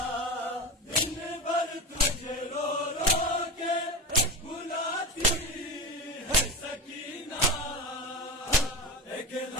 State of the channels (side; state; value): both; normal; correlation 0.23